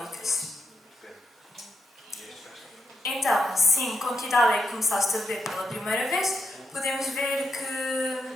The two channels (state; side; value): normal; both; correlation 0.85